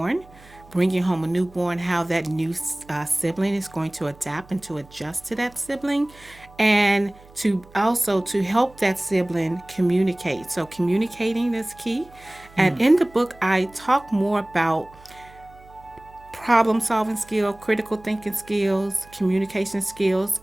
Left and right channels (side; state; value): right; noise; hum, 24 dB below the sound